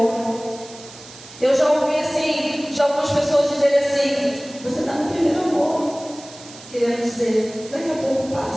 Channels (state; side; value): noise; right; hiss, 18 dB below the sound